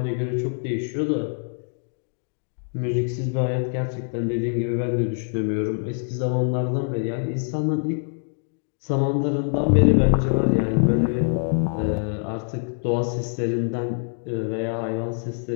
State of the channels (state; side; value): silent; right; digital silence